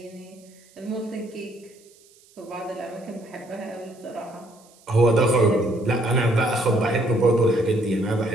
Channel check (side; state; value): right; noise; hiss, 28 dB below the sound